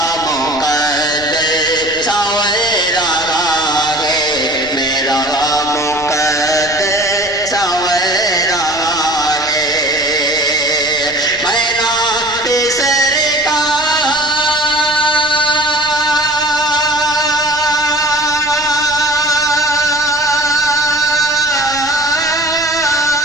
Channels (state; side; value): noise; left; rumble, 19 dB below the sound